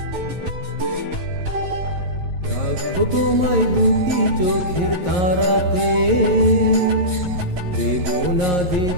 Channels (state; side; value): late; left; 11 ms